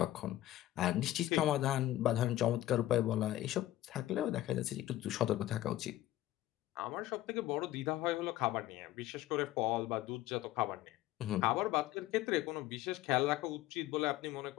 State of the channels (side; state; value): right; quieter; 14.9 dB